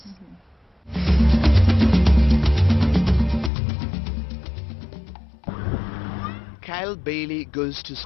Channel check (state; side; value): drops out; right; at 3.5 s